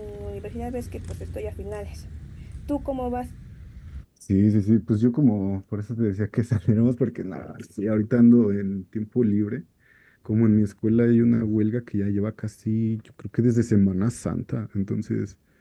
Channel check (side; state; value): both; identical; correlation 1.00